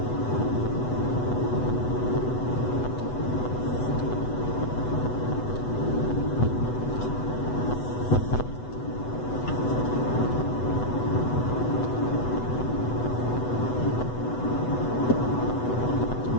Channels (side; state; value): right; late; 8.1 ms